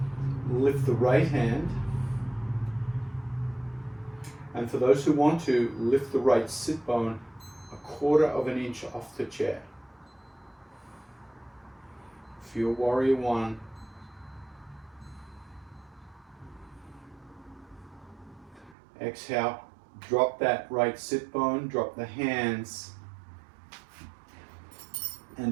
Lift the right hand. And for those who want to, lift the right sit bone 1/4 of an inch off the chair. Feel warrior one. Exhale, drop that right sit bone, drop the hands,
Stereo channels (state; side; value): drops out; left; at 18.8 s